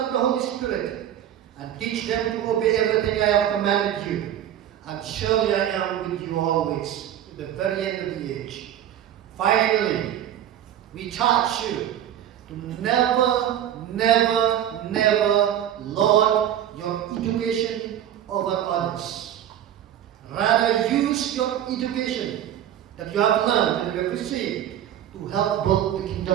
of the Holy Spirit, and teach them to obey everything I have commanded you. And surely I am with you always, to the very end of the age. Finally, we charge you to never, never, never lord your education over others. Rather, use your education that you have learned and you have received to help build the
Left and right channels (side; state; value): left; quieter; 11.0 dB